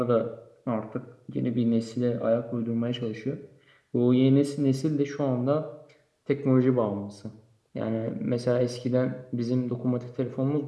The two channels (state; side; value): identical; both; correlation 1.00